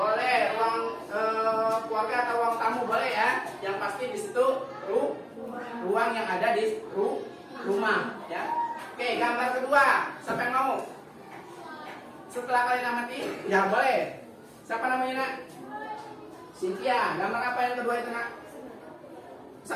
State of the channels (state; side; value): identical; both; correlation 1.00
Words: ruang keluarga atau ruang tamu boleh ya. Yang pasti di situ ruang yang ada di rumah ya. Oke, gambar kedua. Siapa yang mau? Setelah kalian amati, ya boleh. Siapa namanya Nak? Cynthia. Gambar apa yang kedua itu Nak?